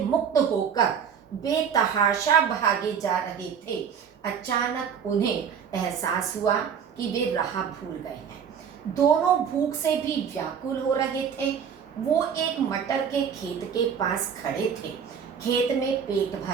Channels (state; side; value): quieter; left; 7.4 dB